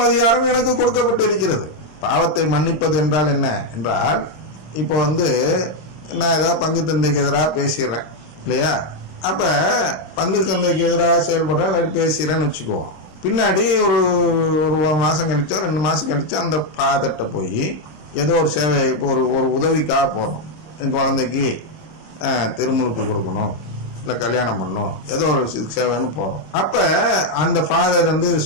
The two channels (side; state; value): right; late; 26 ms